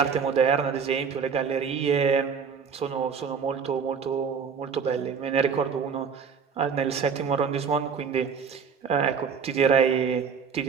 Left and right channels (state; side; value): quieter; left; 6.3 dB